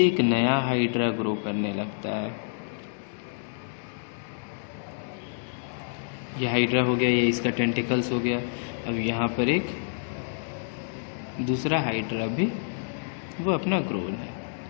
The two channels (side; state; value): right; silent; digital silence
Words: एक नया हाइड्रा ग्रो करने लगता है। ये हाइड्रा हो गया, ये इसका टेंटिकल्स हो गया। अब यहाँ पर एक दूसरा हाइड्रा भी वो अपना ग्रोन है।